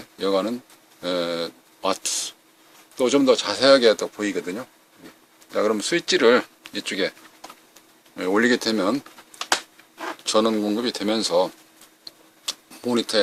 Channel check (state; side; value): identical; both; correlation 1.00